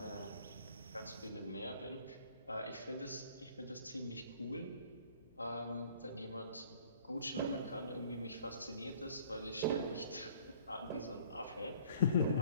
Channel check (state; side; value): inverted; both; correlation -0.55